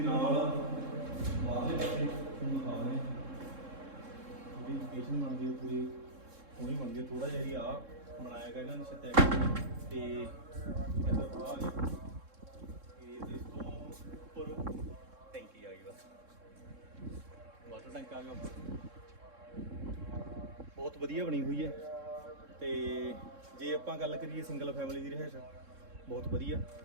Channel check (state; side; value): late; left; 3.7 ms